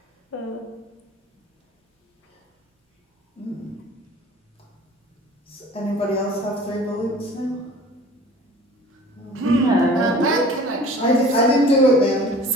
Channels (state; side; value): normal; both; correlation 0.45